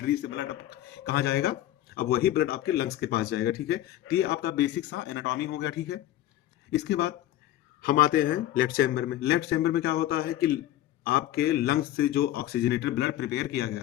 से ब्लड कहाँ जाएगा, अब वही ब्लड आपके लंग्स के पास जाएगा, ठीक है। तो ये आपका बेसिक सा एनाटॉमी हो गया, ठीक है। इसके बाद हम आते हैं लेफ्ट चैम्बर में। लेफ्ट चैम्बर में क्या होता है कि आपके लंग्स से जो ऑक्सीजनेटेड ब्लड प्रिपेयर किया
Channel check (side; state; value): right; quieter; 13.6 dB